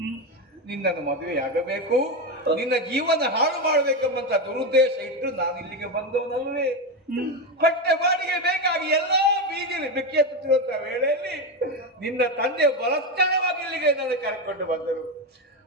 ನಿನ್ನನ್ನು ಮದುವೆಯಾಗಬೇಕು, ನಿನ್ನ ಜೀವನ ಹಾಳು ಮಾಡಬೇಕೆಂಬಂತ ದುರುದ್ದೇಶ ಇಟ್ಟು ನಾನು ಇಲ್ಲಿಗೆ ಬಂದವನಲ್ವೇ. ಹೊಟ್ಟೆ ಬಾಡಿಗೆ ಬೇಕಾಗಿ ಎಲ್ಲಾ ಬೀದಿಯಲ್ಲಿ ಬೆಕ್ಕೆತ್ತುತ್ತಿರುವಂತಹ ವೇಳೆಯಲ್ಲಿ ನಿನ್ನ ತಂದೆ ಬಲಸ್ಥಳವಾಗಿ ಇಲ್ಲಿಗೆ ನನ್ನ ಕರೆಕೊಂಡು ಬಂದರು.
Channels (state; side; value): normal; both; correlation 0.13